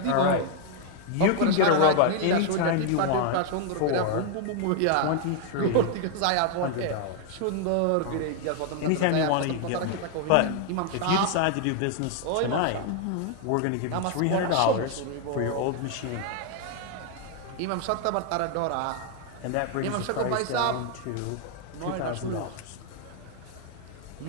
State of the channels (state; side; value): different; both; correlation 0.00